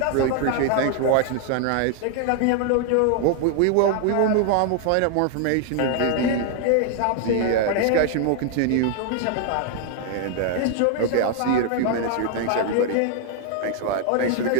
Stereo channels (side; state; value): both; different; correlation 0.00